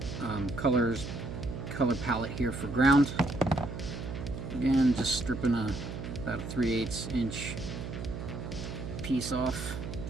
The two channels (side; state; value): right; noise; hum, 7 dB below the sound